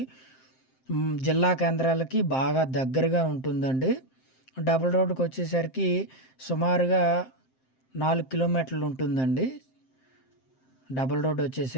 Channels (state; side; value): late; right; 7.7 ms